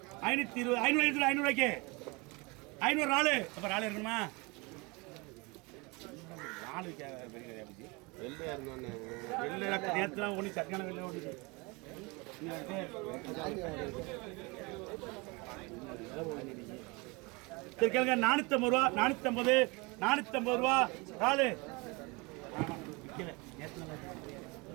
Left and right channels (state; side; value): quieter; left; 27.1 dB